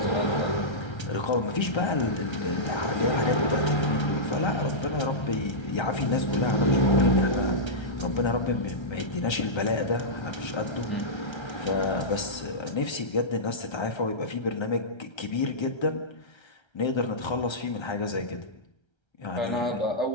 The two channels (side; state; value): right; late; 1.3 ms